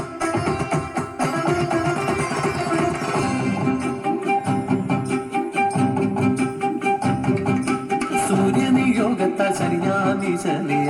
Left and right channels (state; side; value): identical; both; correlation 1.00